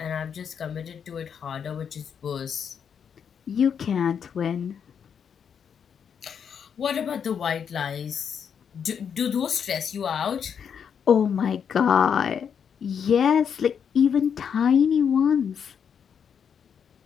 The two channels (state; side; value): quieter; right; 7.4 dB